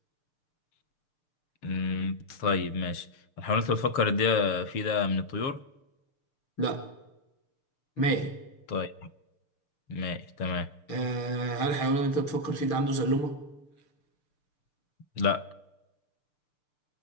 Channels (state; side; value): late; right; 6.7 ms